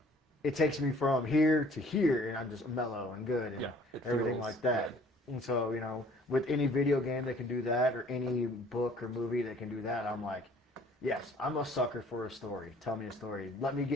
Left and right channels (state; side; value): normal; both; correlation 0.55